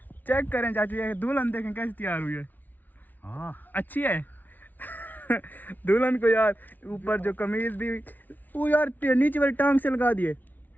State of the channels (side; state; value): right; late; 0.082 ms